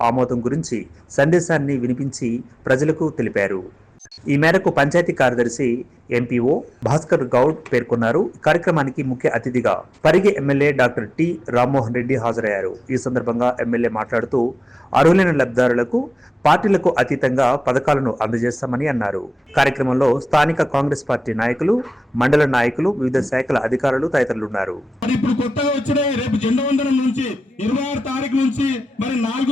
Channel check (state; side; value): normal; both; correlation 0.96